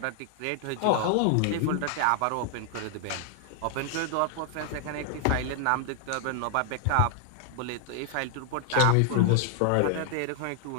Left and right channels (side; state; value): both; different; correlation 0.00